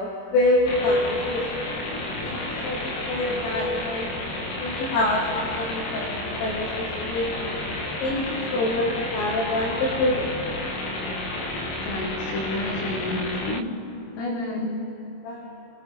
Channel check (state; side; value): late; right; 26 ms